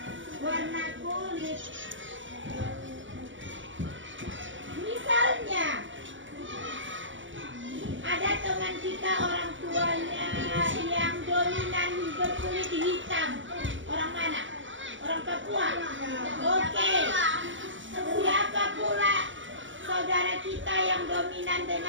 warna kulit. Misalnya, ada teman kita orang tuanya yang dominan berkulit hitam. Orang mana? Orang Papua. Oke. Siapa pula saudara kita yang dominan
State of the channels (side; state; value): left; late; 0.55 ms